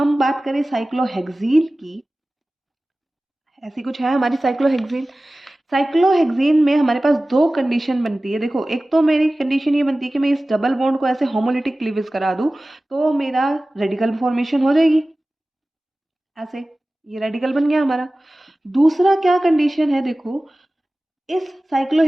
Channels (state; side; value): normal; both; correlation 0.97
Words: बात करें साइक्लोहेक्सीन की, ऐसी कुछ है हमारी साइक्लोहेक्सीन। साइक्लोहेक्सीन में हमारे पास दो कंडीशन बनती है। देखो एक तो मेरी कंडीशन ये बनती है कि मैं इस डबल बॉन्ड को ऐसे होमोलिटिक क्लीवेज करा दूं तो मेरा रेडिकल फॉर्मेशन हो जाएगी, ऐसे ये रेडिकल बन गया हमारा। दूसरा क्या कंडीशन है, देखो इस